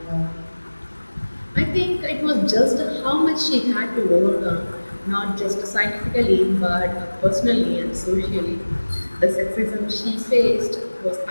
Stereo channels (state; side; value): inverted; both; correlation -1.00